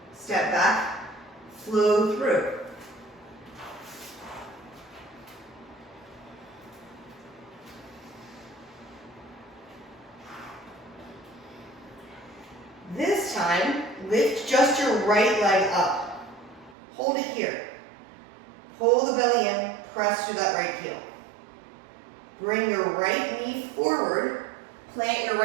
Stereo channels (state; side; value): drops out; left; at 16.8 s